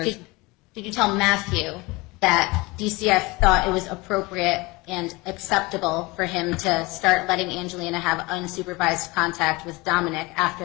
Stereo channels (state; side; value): quieter; right; 23.7 dB